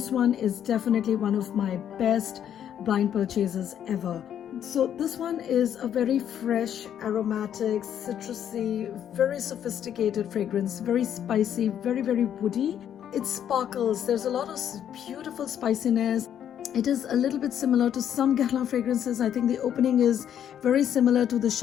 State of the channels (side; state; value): right; quieter; 9.7 dB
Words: one is definitely one of my best blind purchases ever. So this one is a very fresh, aromatic, citrusy, very sophisticated fragrance, very spicy, very, very woody. It sparkles. There's a lot of beautiful spiciness. It is a little bit similar to some Guerlain fragrances. I think the opening is very similar to the